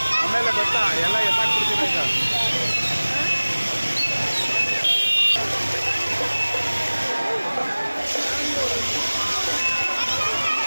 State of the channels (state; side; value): inverted; both; correlation -1.00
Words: ಆಮೇಲೆ ಗೊತ್ತಾ ಎಲ್ಲ ಎತ್ತಾಕ್ಬಿಡ್ತೀನಿ ಈಗ.